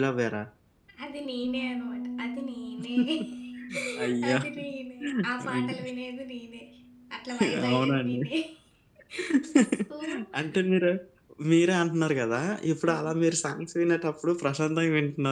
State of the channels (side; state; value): both; identical; correlation 1.00